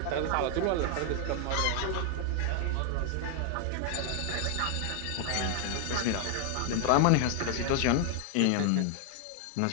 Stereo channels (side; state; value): both; different; correlation 0.00